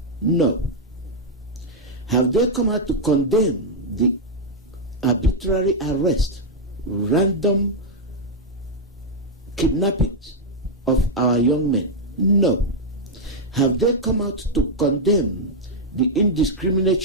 No. Have they come out to condemn the arbitrary arrest, random kidnappings of our young men? No. Have they come out to condemn the indiscriminate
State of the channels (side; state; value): both; normal; correlation -0.02